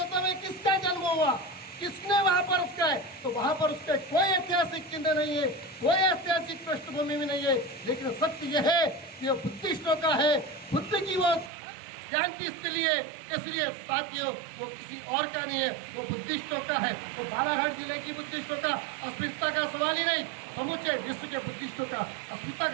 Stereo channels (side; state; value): left; drops out; at 11.5 s